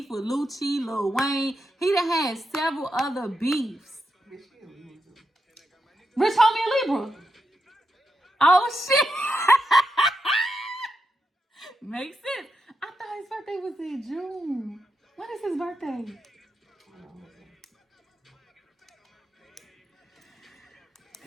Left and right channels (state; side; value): normal; both; correlation 0.85